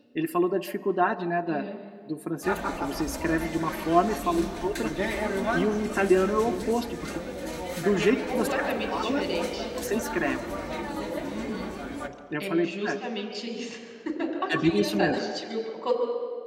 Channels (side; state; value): both; identical; correlation 1.00